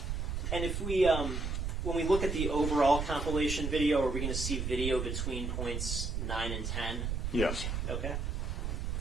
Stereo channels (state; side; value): noise; right; rumble, 2 dB below the sound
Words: And if we, when we look at the overall compilation video, are we going to see video between points 9 and 10? Yes. Okay.